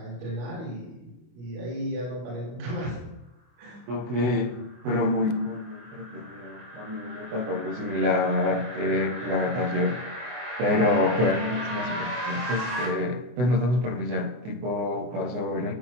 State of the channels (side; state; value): left; late; 24 ms